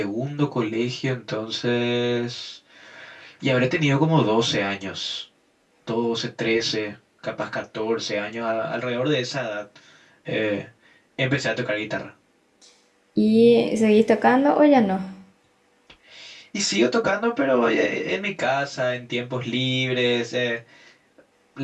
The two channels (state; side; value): identical; both; correlation 1.00